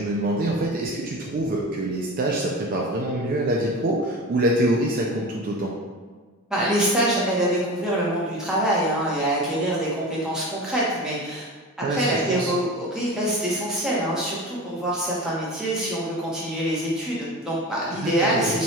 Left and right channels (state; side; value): normal; both; correlation 0.30